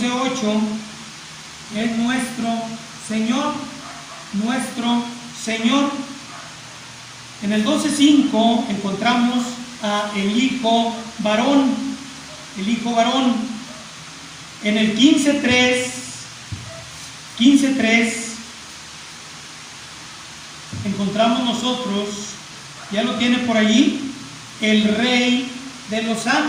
es nuestro Señor, nuestro Señor. En el 12.5 encontramos a el Hijo varón, el Hijo varón. En el 15.3 encontramos nosotros, ya lo tiene por allí, el Rey de los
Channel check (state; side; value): identical; both; correlation 1.00